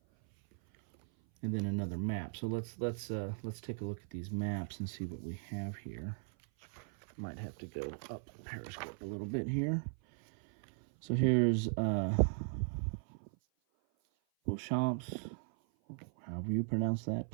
And then another map. So let's take a look at these maps and see what we have here. Might have to go up Periscope a little bit here. So here's Vauchamps, however you pronounce that,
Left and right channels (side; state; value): left; silent; 53 dB below the other